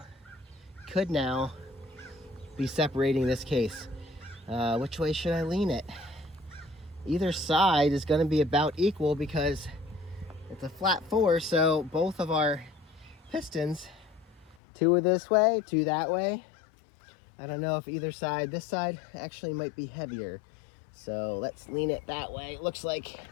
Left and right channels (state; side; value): drops out; right; at 14.6 s